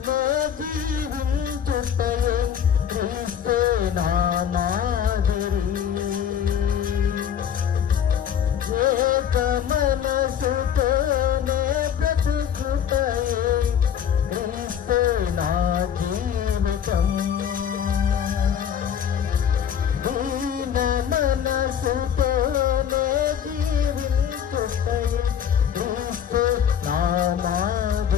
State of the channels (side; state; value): right; quieter; 8.8 dB